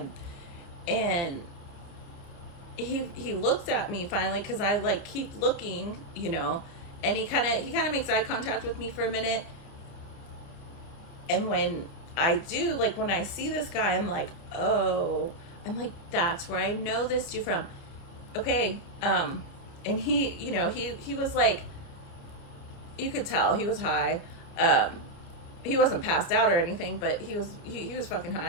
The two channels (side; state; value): right; late; 29 ms